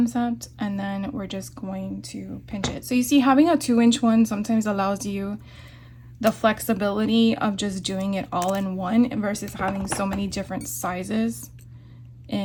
and then we're just going to pinch it. So you see, having a 2-inch one sometimes allows you the flexibility of just doing it all in one versus having so many different sizes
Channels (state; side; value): identical; both; correlation 1.00